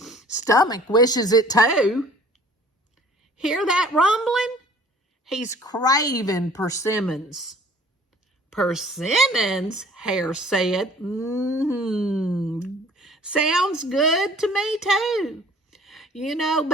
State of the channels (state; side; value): normal; both; correlation 0.52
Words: "Stomach wishes it too." "Hear that rumbling? He's craving persimmons." "Persimmons?" Hare said. Sounds good to me too. You know,